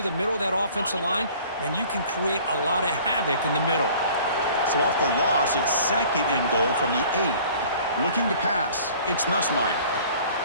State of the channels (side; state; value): both; inverted; correlation -0.50